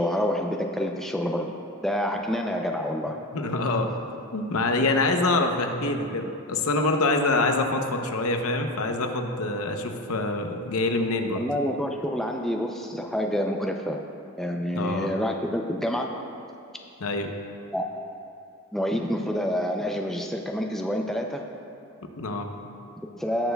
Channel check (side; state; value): both; normal; correlation 0.35